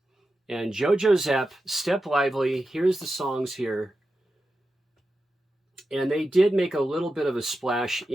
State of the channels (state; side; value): normal; both; correlation 0.91